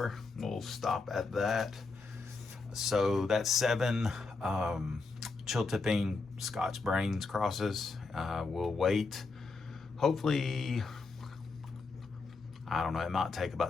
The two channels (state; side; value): quieter; right; 4.1 dB